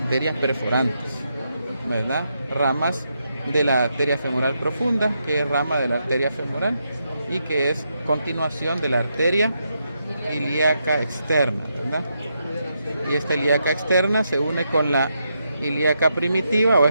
perforantes, ¿verdad? Ramas de la arteria femoral profunda, que es rama de la arteria femoral y que es continuación de la arteria ilíaca externa, ¿verdad? Y esta ilíaca externa se une con la ilíaca primitiva o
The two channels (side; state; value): both; inverted; correlation -0.82